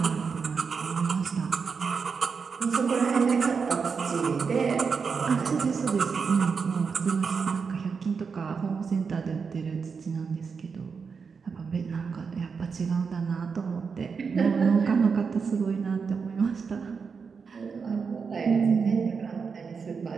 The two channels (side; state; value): left; quieter; 5.5 dB